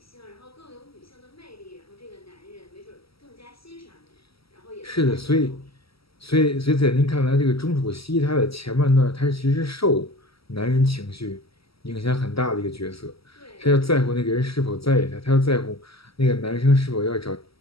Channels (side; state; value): right; late; 0.75 ms